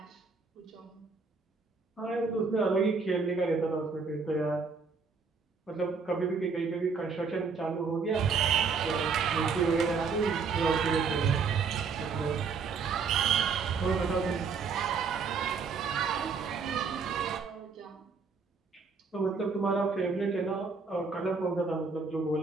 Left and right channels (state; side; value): quieter; left; 5.1 dB